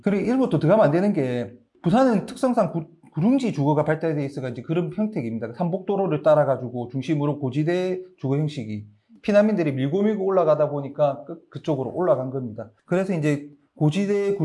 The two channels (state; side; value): identical; both; correlation 1.00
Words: 그래 이런 것도 들어가면 안 되는 게 부산은 특성상 구릉지 주거가 발달되어 있어가 이제 그런 형태입니다. 삼복도로를 따라가지고 중심으로 고지대 주거 형식이 피난민들이 밀고 올라가다 보니까 그쪽으로 올라간 겁니다. 그래서 이제 고지대